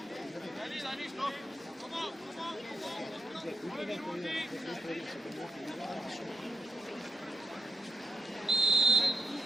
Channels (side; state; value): both; normal; correlation 0.87